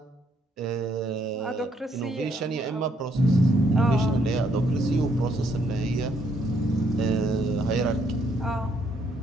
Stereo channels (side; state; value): both; normal; correlation 0.71